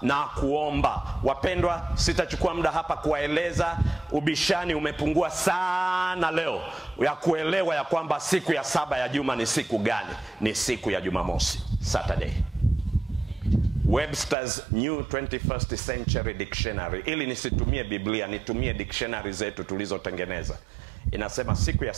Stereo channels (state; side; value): drops out; left; at 14.4 s